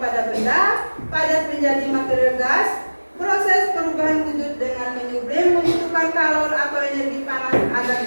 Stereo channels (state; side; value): inverted; both; correlation -1.00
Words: benda padat menjadi material gas. Proses perubahan wujud dengan menyublim membutuhkan kalor atau energi panas agar